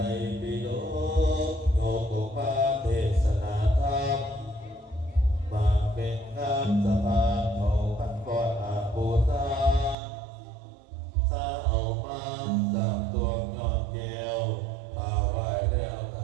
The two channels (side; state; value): left; drops out; at 10.0 s